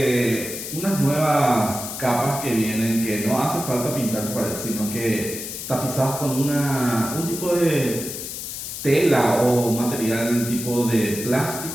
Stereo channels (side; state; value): left; noise; hiss, 7 dB below the sound